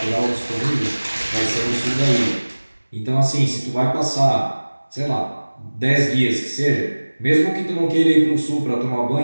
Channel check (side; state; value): both; inverted; correlation -1.00